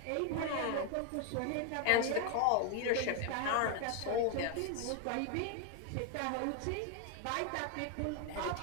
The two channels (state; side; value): different; both; correlation 0.01